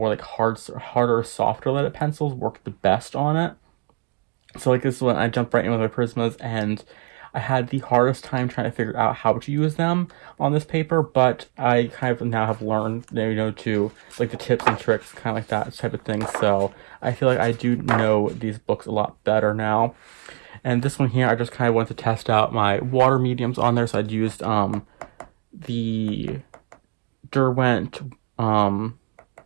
harder, softer leaded pencils work the best on it. So like this is when I jumped right in with my Prismas, and I had the hardest time trying to figure out how to use them on this paper, but I kind of now have learned, to like the tips and tricks, kind of like that type of thing. So I feel like I do know these books a lot better now. And this one here, I just kind of wanted to test out my water mediums on there. So I'd used the Derwent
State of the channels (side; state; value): left; quieter; 35.3 dB